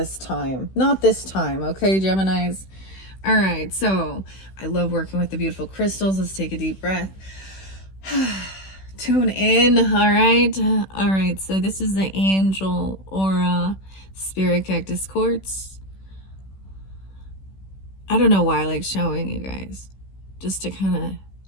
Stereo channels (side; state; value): right; late; 16 ms